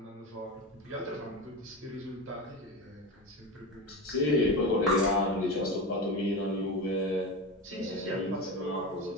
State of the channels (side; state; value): both; normal; correlation 0.23